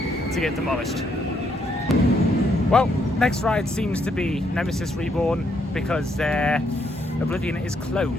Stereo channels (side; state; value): both; normal; correlation 0.73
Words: get demolished. Well, next ride seems to be Nemesis Reborn because Oblivion is